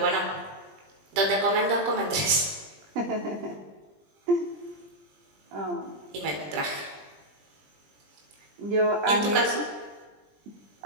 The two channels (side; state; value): left; late; 20 ms